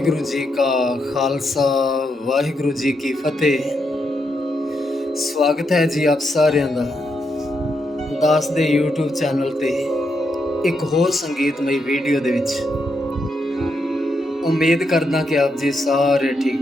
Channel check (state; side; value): normal; both; correlation 0.81